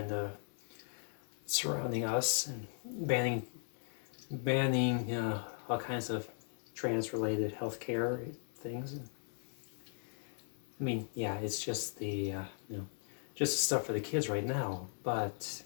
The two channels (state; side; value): silent; right; 53 dB below the other